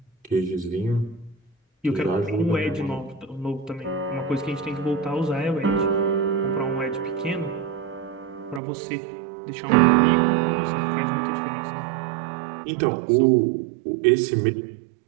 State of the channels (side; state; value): left; drops out; at 8.6 s